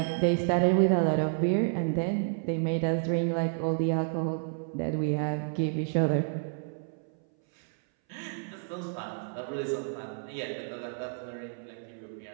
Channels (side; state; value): left; silent; 58 dB below the other